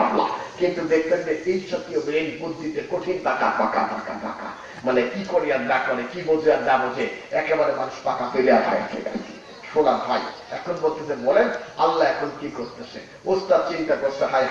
কিন্তু দেখবেন যে এই জাতীয় ব্রেন বুদ্ধিতে কঠিন পাকা পাকা পাকা পাকা, মানে কি করে আর না করে, কি বোঝে আর না বোঝে, একেবারে মানুষ পাকা পেলে আর হয় আছে। শোনা ভাই, এখন বলতেছে বলেন আল্লাহ এখন কি করতেছে? ওস্তাদ চিন্তা করছে, হায়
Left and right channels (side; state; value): both; identical; correlation 1.00